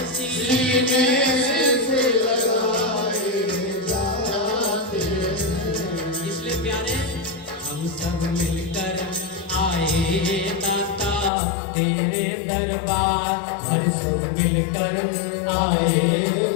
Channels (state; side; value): drops out; right; at 11.3 s